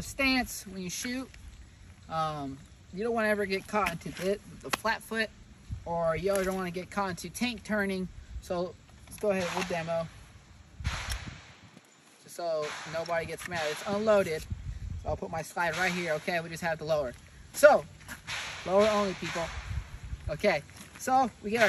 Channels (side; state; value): both; identical; correlation 1.00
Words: stance when you shoot. You don't want to ever get caught into the flat foot, or you don't want to get caught into tank turning. So let's go ahead, we'll demo. Just so nobody gets mad. It's unloaded. So I'll put my slide right here, okay? We just have to lower. So, lower only, people. Okay, so we get